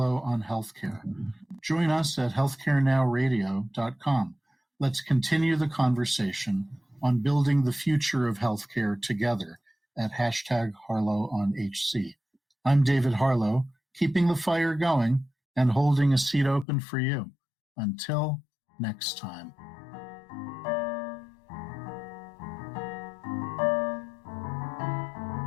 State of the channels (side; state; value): right; drops out; at 16.7 s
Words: on Healthcare. Join us at healthcarenowradio.com. Let's continue the conversation on building the future of healthcare together at #HarlowOnHC. I'm David Harlow, keeping the fire going and holding a seat open for you. Until next time.